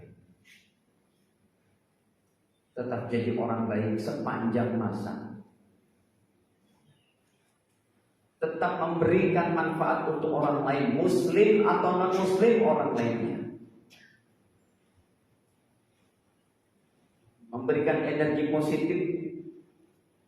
Tetap jadi orang baik sepanjang masa. Tetap memberikan manfaat untuk orang lain, muslim atau non-muslim orang lainnya. Memberikan energi positif.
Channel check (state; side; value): identical; both; correlation 1.00